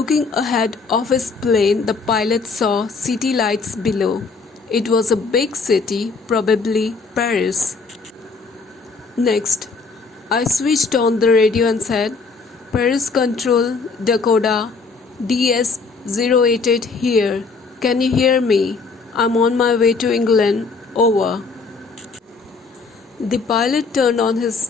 ahead of his plane, the pilot saw city lights below. It was a big city, probably Paris. Next, I switched on the radio and said, Paris Control, Dakota, DS-088 here. Can you hear me? I'm on my way to England. Over. The pilot turned on his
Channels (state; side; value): quieter; right; 4.4 dB